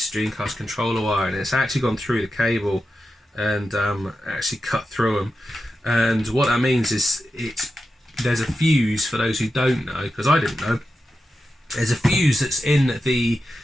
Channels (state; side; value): normal; both; correlation 0.90